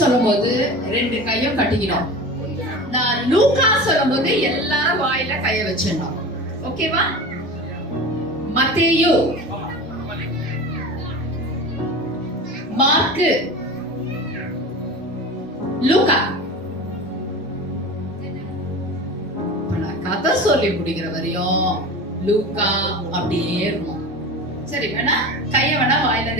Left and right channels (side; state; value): both; normal; correlation 0.32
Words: சொல்லும்போது 2 கையும் கட்டிக்கணும். நான் லூக்கா சொல்லும்போது எல்லாரும் வாயில கைய வச்சிடணும். ஓகேவா? மத்தேயு, மார்க்கு, லூக்கா. நான் கதை சொல்லி முடிக்கிற வரையும் லூக்கா அப்படியே இருக்கும். சரி, வேணா கைய வேணா வாயில